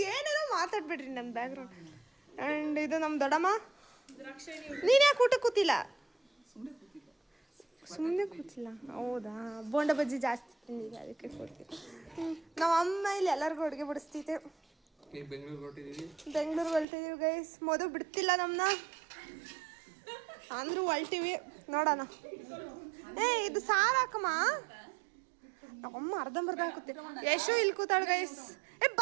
ಏನೇನೋ ಮಾತಾಡ್ಬಿಡ್ರಿ ನನ್ನ ಬ್ಯಾಕ್ಗ್ರೌಂಡ್. ಆ್ಯಂಡ್ ಇದು ನಮ್ಮ ದೊಡ್ಡಮ್ಮ. ನೀನು ಯಾಕೆ ಊಟ ಕೂತಿಲ್ಲ? ಸುಮ್ಮನೆ ಕೂತಿಲ್ಲ. ಹೌದಾ, ಬೋಂಡ ಬಜ್ಜಿ ಜಾಸ್ತಿ ತಿಂದಿದೆ ಅದಕ್ಕೆ ಕೂತಿಲ್ಲ. ನಮ್ಮ ಅಮ್ಮ ಇಲ್ಲಿ ಎಲ್ಲರಿಗೂ ಅಡುಗೆ ಬಿಡಿಸ್ತೈತೆ. ಬೆಂಗಳೂರಿಗೆ ಹೊಲ್ಟಿದ್ದೀವಿ ಗೈಸ್. ಮೋದು ಬಿಡ್ತಿಲ್ಲ ನಮ್ಮನ್ನ, ಅಂದ್ರೂ ಹೊಲ್ಟಿವಿ. ನೋಡೋಣ. ಇದು ಸಾರು ಹಾಕಮ್ಮ. ನಮ್ಮಮ್ಮ ಅರ್ಧಂಬರ್ಧ ಹಾಕುತ್ತೆ. ಯಶು ಇಲ್ಲಿ ಕೂತಾಳ ಗೈಸ್.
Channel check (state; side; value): drops out; left; at 16.9 s